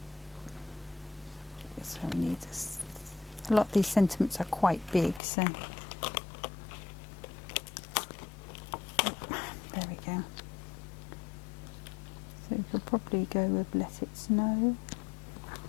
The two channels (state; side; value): drops out; right; at 5.2 s